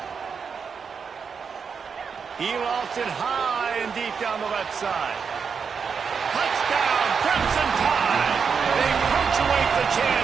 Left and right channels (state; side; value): quieter; left; 6.1 dB